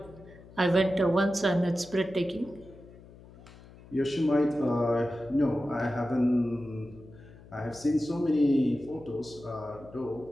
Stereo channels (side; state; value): left; noise; hum, 21 dB below the sound